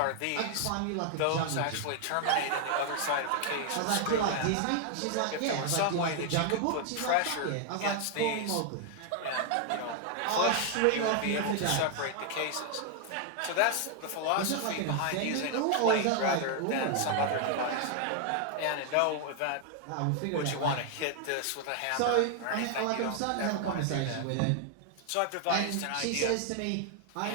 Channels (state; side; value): different; both; correlation 0.00